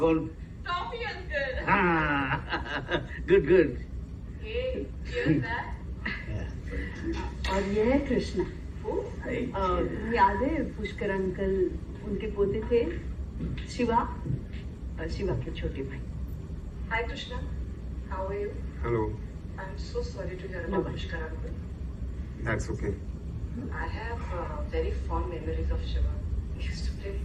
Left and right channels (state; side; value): identical; both; correlation 1.00